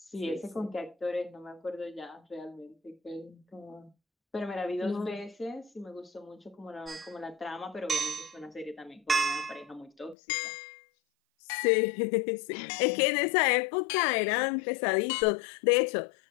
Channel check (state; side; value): drops out; right; at 10.2 s